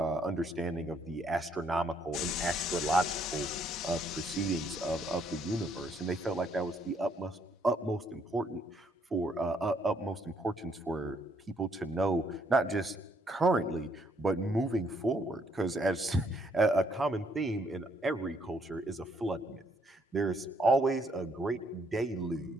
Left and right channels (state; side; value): normal; both; correlation 0.69